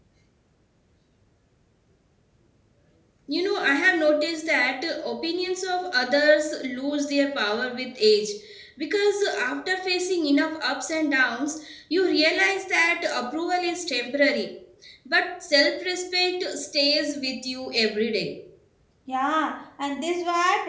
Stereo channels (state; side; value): identical; both; correlation 1.00